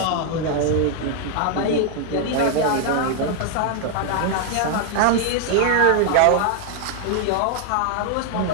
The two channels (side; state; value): both; different; correlation 0.00